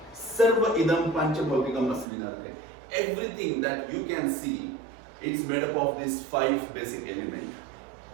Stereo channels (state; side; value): drops out; left; at 2.1 s